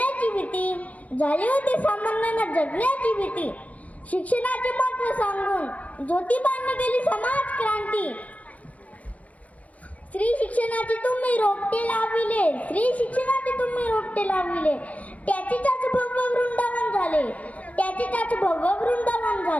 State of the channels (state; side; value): late; right; 0.069 ms